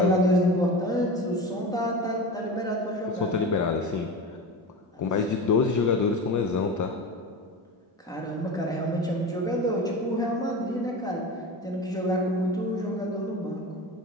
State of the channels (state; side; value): normal; both; correlation 0.28